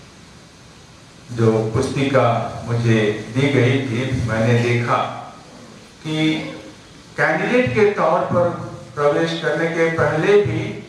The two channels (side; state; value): both; identical; correlation 1.00